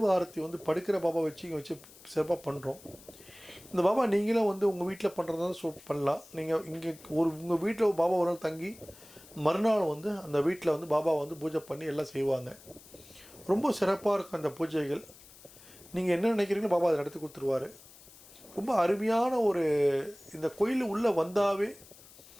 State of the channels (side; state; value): left; noise; hiss, 22 dB below the sound